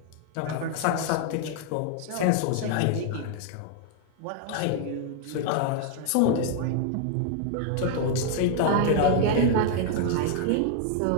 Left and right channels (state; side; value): different; both; correlation 0.00